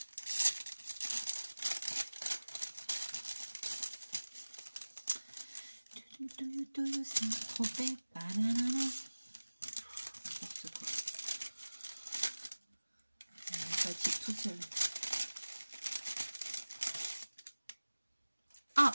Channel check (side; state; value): both; inverted; correlation -1.00